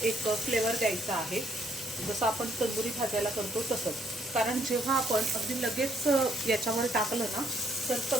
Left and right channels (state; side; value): normal; both; correlation 0.69